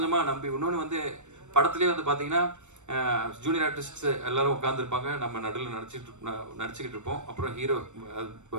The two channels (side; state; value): left; late; 0.84 ms